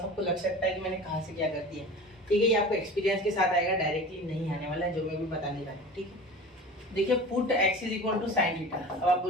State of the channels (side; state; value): both; normal; correlation 0.36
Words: आपको लग सकता है कि मैंने कहाँ से क्या कर दिया। ठीक है, ये आपको एक्सपीरियंस के साथ आएगा, डायरेक्टली नहीं आने वाला है जो मैं भी बताने वाला हूँ। ठीक है, देखिए put x is equal to sine theta. अब आप